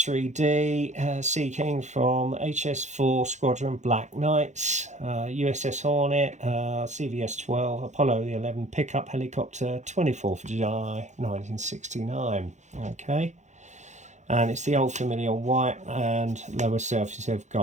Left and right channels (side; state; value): left; late; 0.34 ms